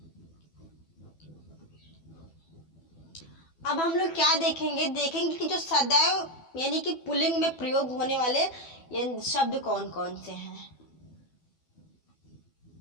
अब हम लोग क्या देखेंगे, देखेंगे कि जो सदैव यानी कि पुल्लिंग में प्रयोग होने वाले ये शब्द कौन कौन से हैं।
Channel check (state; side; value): late; right; 12 ms